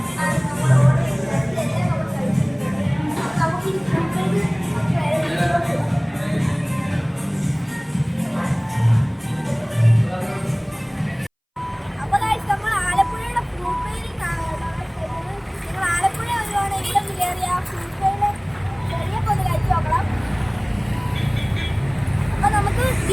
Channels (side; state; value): both; identical; correlation 1.00